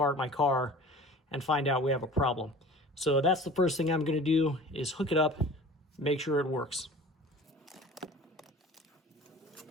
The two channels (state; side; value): normal; both; correlation 0.42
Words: my car and find out we have a problem. So that's the first thing I'm going to do, is hook it up, make sure it works.